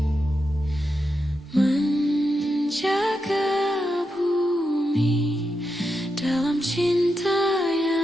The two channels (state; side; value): normal; both; correlation 0.86